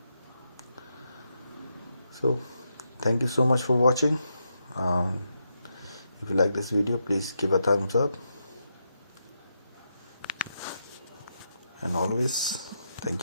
So thank you so much for watching. If you like this video, please give a thumbs up, and always thank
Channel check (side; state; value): both; inverted; correlation -0.83